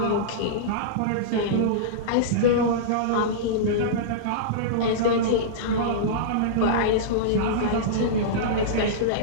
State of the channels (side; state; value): both; different; correlation -0.04